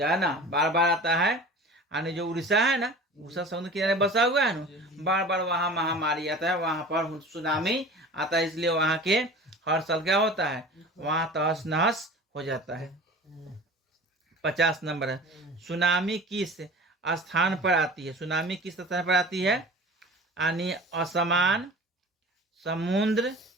है ना, बार बार आता है। यानी जो उड़ीसा है ना, उड़ीसा समुद्र किनारे बसा हुआ है ना, बार बार वहाँ महामारी आता है, वहां पर सुनामी आता है। इसलिए वहां के हर साल क्या होता है? वहां तहस नहस हो जाता है। 50 नंबर है। सुनामी किस स्थान पर आती है? सुनामी किस स्थान पर आती है? यानी असमान, समुद्र,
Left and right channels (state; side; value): normal; both; correlation 0.40